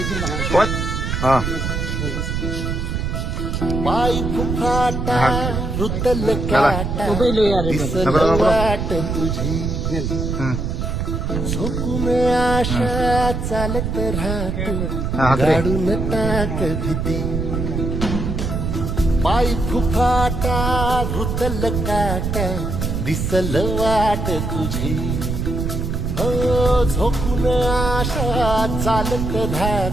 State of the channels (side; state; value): right; noise; rumble, 2 dB below the sound